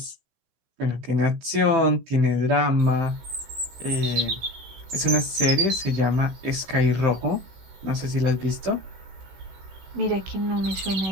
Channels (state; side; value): late; left; 16 ms